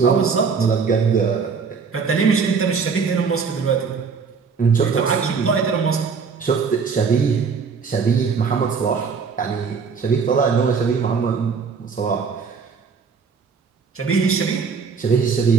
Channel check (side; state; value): left; quieter; 5.5 dB